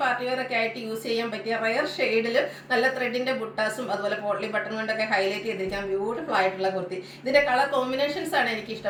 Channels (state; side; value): identical; both; correlation 1.00